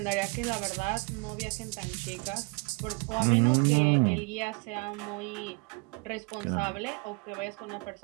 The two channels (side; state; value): left; quieter; 31.5 dB